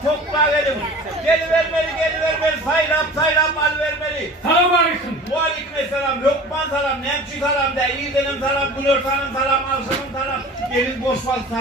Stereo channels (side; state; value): both; normal; correlation 0.40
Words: toplar gelin. Gelivermeli, saylam al vermeli. Selamünaleyküm. Aleykümselam, Lokman salam, Nemçi salam, İğdenim salam, Gülörtan'ın salam, Alsan'ın salam. Gelin Bosfal